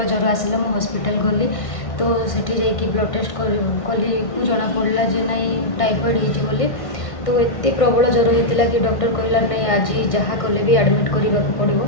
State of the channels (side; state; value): right; late; 1.5 ms